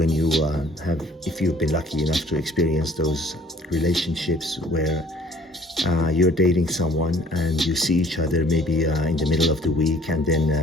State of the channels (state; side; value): normal; both; correlation 0.55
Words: you if you've been lucky enough to experience those relationships where you're dating someone and you see each other maybe in the middle of the week, and